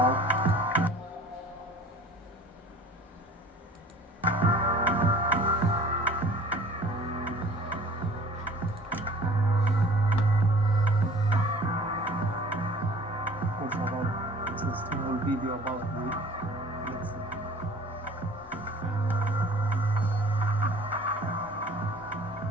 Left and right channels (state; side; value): normal; both; correlation 0.48